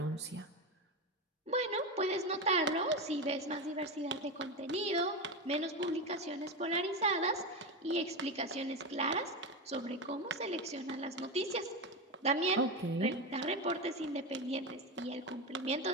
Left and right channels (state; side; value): normal; both; correlation 0.16